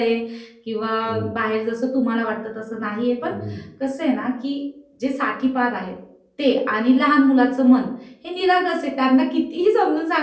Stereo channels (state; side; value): identical; both; correlation 1.00